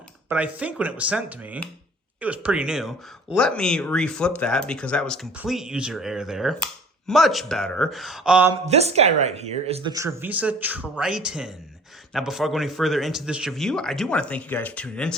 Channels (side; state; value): both; normal; correlation 0.50